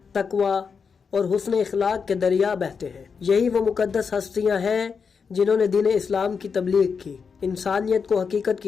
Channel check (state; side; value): quieter; right; 5.8 dB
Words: تقوی اور حسن اخلاق کے دریا بہتے ہیں۔ یہی وہ مقدس ہستیاں ہیں جنہوں نے دین اسلام کی تبلیغ کی، انسانیت کو حقیقت